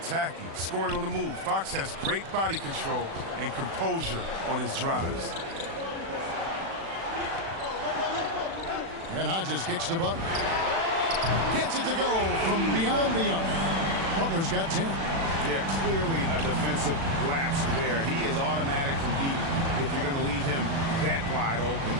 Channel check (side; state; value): left; late; 36 ms